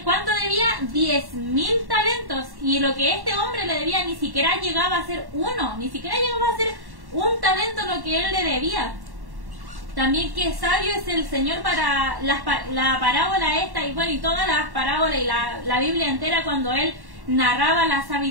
cuánto debía? 10.000 talentos. Y lo que este hombre le debía ni siquiera llegaba a ser uno, ni siquiera llegaba a ser un talento lo que Él le debía. También qué sabio es el Señor para la parábola esta, y bueno, y todas las parábolas y la Biblia entera, cuando Él narraba la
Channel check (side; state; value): left; late; 1.1 ms